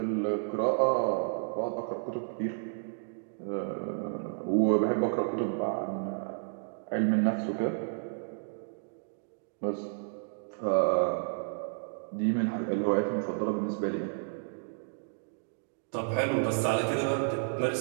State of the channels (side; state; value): left; silent; digital silence